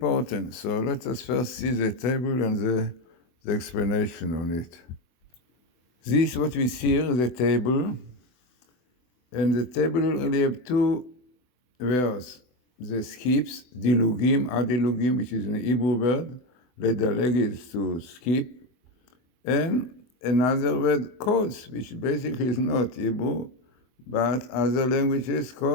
So let us first see the table and the explanation on it. This, what we see here, is the table, and the table really have two words. The skips, dilugim, adilugim, which is an Hebrew word. Ledaleg is to skip, and another word, codes, which basically is not Hebrew, but other languages,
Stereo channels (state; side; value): late; right; 24 ms